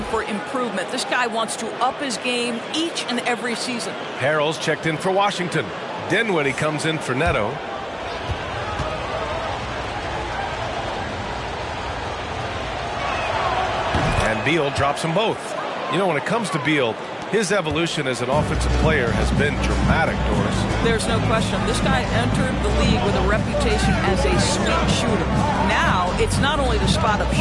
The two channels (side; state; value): both; identical; correlation 1.00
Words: for improvement. This guy wants to up his game each and every season. Harrell's checked in for Washington. Dinwiddie comes in for Neto. And Beal drops them both. You know, when it comes to Beal, his evolution as an offensive player has been dramatic, Doris. There's no question. This guy entered the league with a reputation as a sweet shooter. Now, it's not only the spot-up